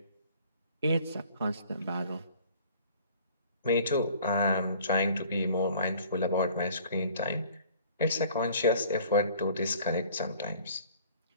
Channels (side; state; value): both; inverted; correlation -0.52